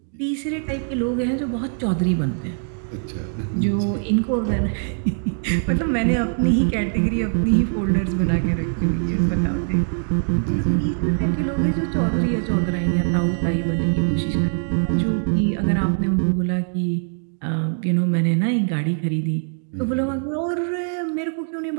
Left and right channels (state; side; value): silent; left; digital silence